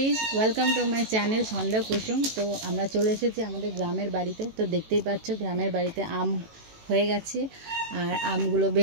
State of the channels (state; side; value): late; left; 18 ms